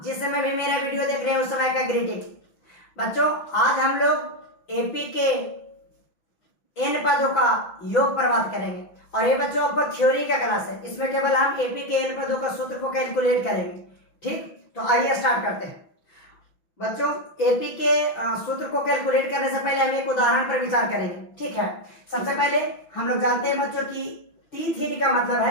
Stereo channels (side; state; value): right; late; 5.9 ms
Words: जिस समय भी मेरा वीडियो देख रहे हैं उस समय का ग्रीटिंग। बच्चों, आज हम लोग एपी के एन पदों का योग पर बात करेंगे और ये बच्चों आपको थ्योरी का क्लास है। इसमें केवल हम एपी के एन पदों का सूत्र को कैलकुलेट करेंगे। ठीक, तो आइए स्टार्ट करते हैं। बच्चों, एपी के सूत्र को कैलकुलेट करने से पहले हम एक उदाहरण पर विचार करेंगे। ठीक है, सबसे पहले हम लोग जानते हैं बच्चों की T3 का मतलब